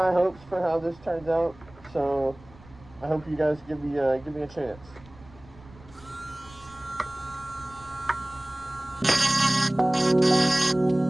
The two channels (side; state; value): right; noise; rumble, 23 dB below the sound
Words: hopes for how this turns out, so I hope you guys give me a chance.